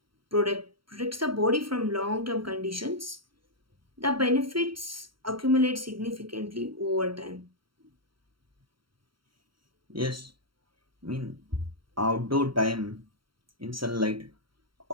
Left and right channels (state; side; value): late; left; 0.73 ms